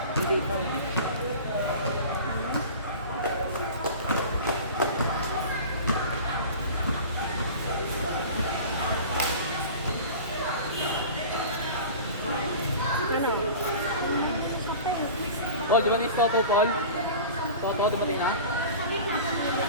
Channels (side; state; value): both; inverted; correlation -0.37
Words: Hindi ito. Paul, di ba ni Stopo, Paul? Toto, dumating na?